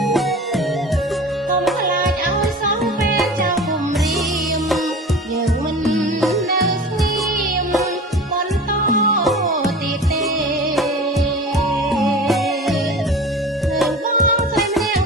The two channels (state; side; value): normal; both; correlation 0.37